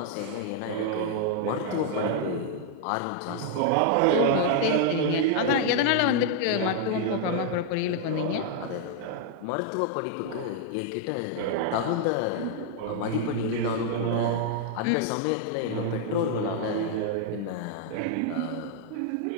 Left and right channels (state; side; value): different; both; correlation -0.01